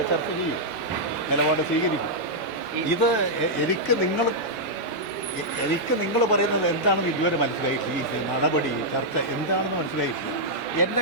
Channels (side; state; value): both; normal; correlation -0.07